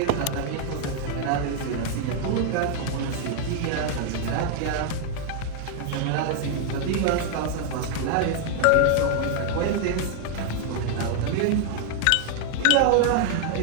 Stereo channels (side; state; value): both; different; correlation 0.00